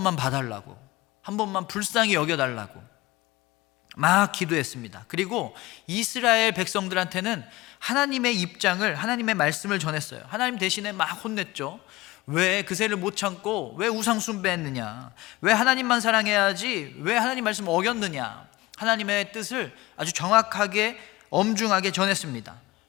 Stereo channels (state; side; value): quieter; right; 19.9 dB